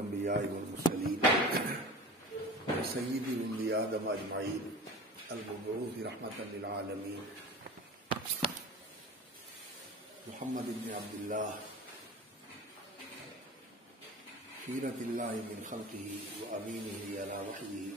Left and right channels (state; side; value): normal; both; correlation 0.36